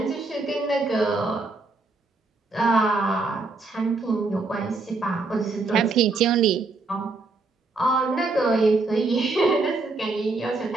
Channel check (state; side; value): quieter; left; 3.6 dB